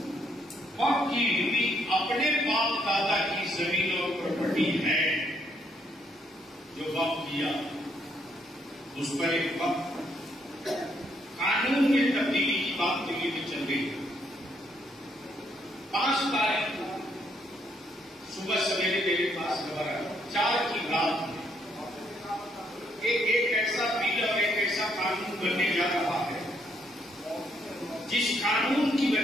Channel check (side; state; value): both; normal; correlation 0.72